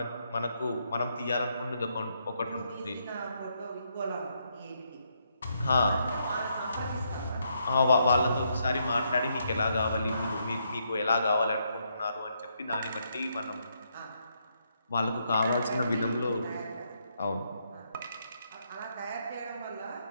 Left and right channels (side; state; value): both; inverted; correlation -0.76